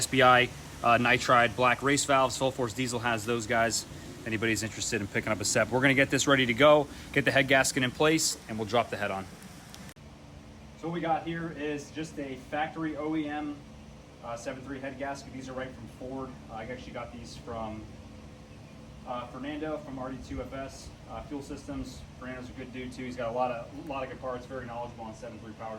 nitride black race valves. Full Force Diesel has those guys. If anybody's interested in picking up a set, we're going to get this ready to go, get the head gasket in place, and we'll drop the head on. So what we got here is just a factory OEM 7.3 head gasket. These are right from Ford. I actually got these from Fernando from RD2FS Fuel Systems. Fernando's a good dude too. He's got a lot of good parts, very knowledgeable on 7.3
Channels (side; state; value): both; identical; correlation 1.00